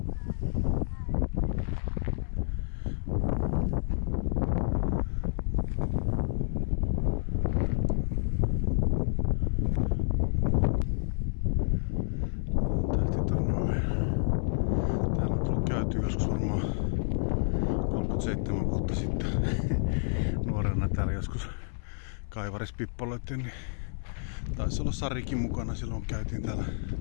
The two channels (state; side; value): silent; right; digital silence